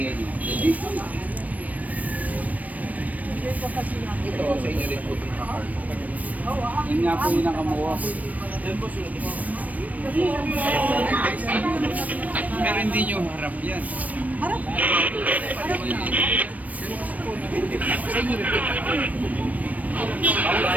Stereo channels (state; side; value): late; left; 0.072 ms